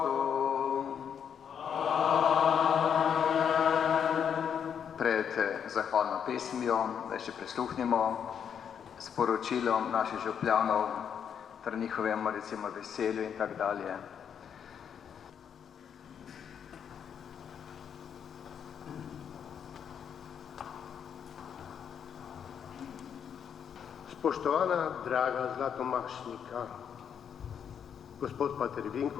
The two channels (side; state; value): right; quieter; 8.0 dB